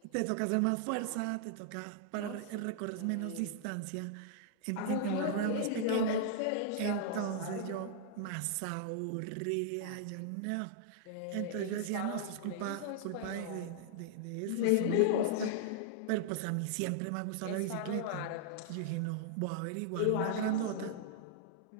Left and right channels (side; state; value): both; different; correlation -0.01